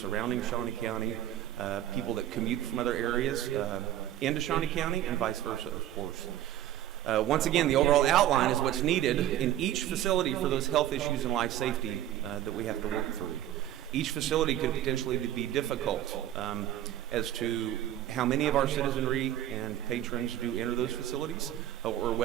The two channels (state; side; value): quieter; left; 12.6 dB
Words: Shawnee County, people that commute from other areas into Shawnee County, and vice versa, of course. Once again, the overall outline is what's needed in each facility for those health issues and life safety that we have to work through. Each facility could potentially be difficult as to how many of our citizenry and patrons do enter those facilities, or